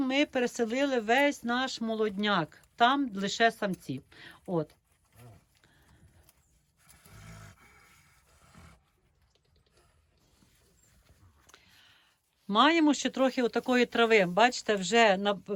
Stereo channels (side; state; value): both; identical; correlation 1.00